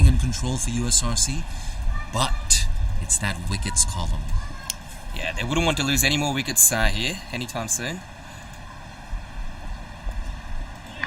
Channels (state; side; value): identical; both; correlation 1.00